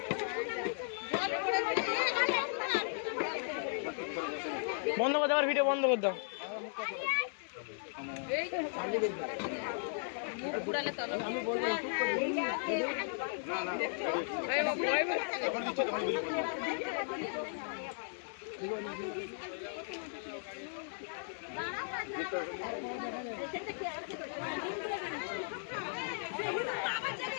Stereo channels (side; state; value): right; silent; digital silence